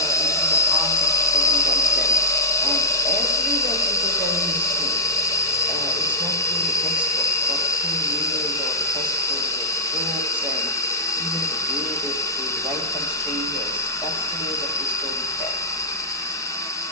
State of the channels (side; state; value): both; normal; correlation -0.06